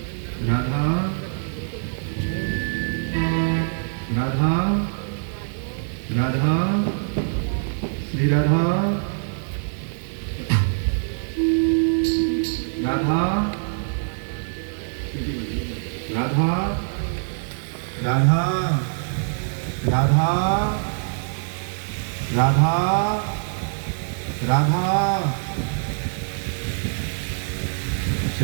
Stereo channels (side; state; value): left; silent; 63 dB below the other